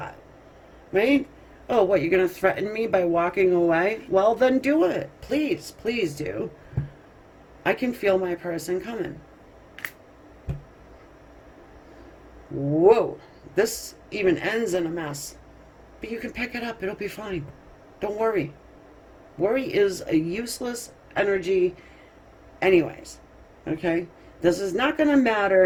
right? Oh, what, you're going to threaten me by walking away? Well, then do it. Please, please do. I can feel my person coming. Whoa, this even ends in a mess. But you can pick it up. It'll be fine. Don't worry. Worry is a useless energy anyways. Okay? This is not going to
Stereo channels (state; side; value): identical; both; correlation 1.00